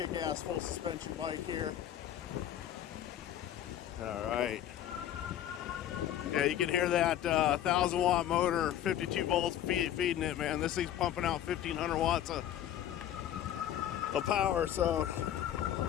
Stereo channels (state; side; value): quieter; right; 11.2 dB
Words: full suspension bike here. All right. Yeah, you can hear that 1,000 watt motor, 52 volts feeding it, man. This thing's pumping out 1,500 watts of power, so